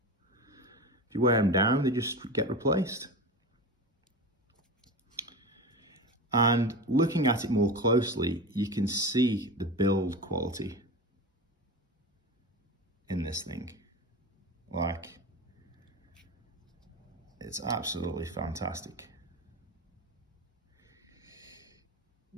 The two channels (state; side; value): normal; both; correlation 0.26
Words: you wear them down, they just get replaced. And looking at it more closely, you can see the build quality in this thing. Like, it's absolutely fantastic.